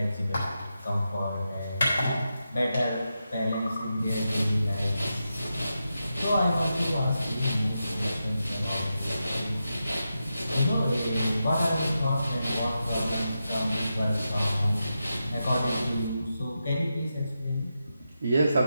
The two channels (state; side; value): inverted; both; correlation -0.88